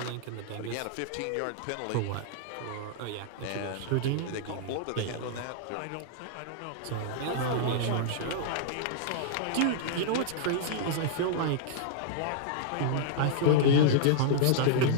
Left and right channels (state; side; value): different; both; correlation -0.01